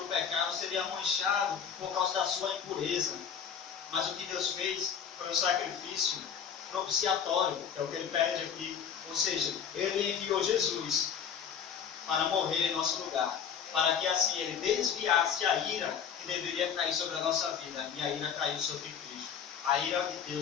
pecado, seria manchado por causa da sua impureza. Mas o que Deus fez foi um sacrifício propiciatório, é o que ele pede aqui. Ou seja, ele enviou Jesus para morrer em nosso lugar, para que assim ele desviasse a ira que deveria cair sobre a nossa vida, e a ira caiu sobre Cristo. A ira de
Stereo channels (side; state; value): right; quieter; 7.5 dB